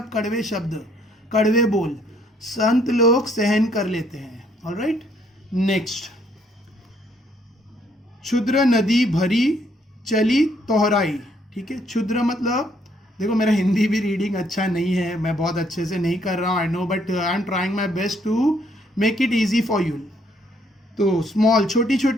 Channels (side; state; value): both; normal; correlation 0.68